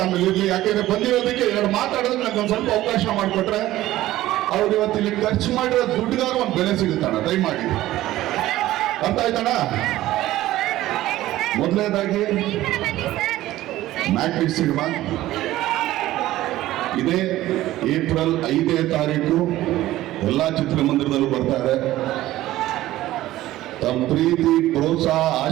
ಆಮೇಲೆ ಇರ್ಲಿ. ಯಾಕೆಂದ್ರೆ ಬಂದಿರೋದಕ್ಕೆ ಎರಡು ಮಾತಾಡೋದಕ್ಕೆ ನಂಗೆ ಒಂದ್ ಸ್ವಲ್ಪ ಅವಕಾಶ ಮಾಡಿಕೊಟ್ರೆ ಅವ್ರು ಇವತ್ತು ಇಲ್ಲಿ ಖರ್ಚು ಮಾಡಿರೋ ದುಡ್ಡುಗಾರ ಒಂದು ಬೆಲೆ ಸಿಗುತ್ತಣ್ಣ. ದಯಮಾಡಿ ಅರ್ಥ ಆಯ್ತಣ್ಣ. ಮೊದಲನೇದಾಗಿ ಮ್ಯಾಟ್ರಿಕ್ಸ್ ಸಿನಿಮಾ ಇದೇ ಏಪ್ರಿಲ್ 5ನೇ ತಾರೀಕು ಎಲ್ಲಾ ಚಿತ್ರಮಂದಿರದಲ್ಲೂ ಬರ್ತಾರೆ. ತಮ್ಮ ಪ್ರೀತಿ, ಪ್ರೋತ್ಸಾಹ,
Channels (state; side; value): quieter; left; 15.4 dB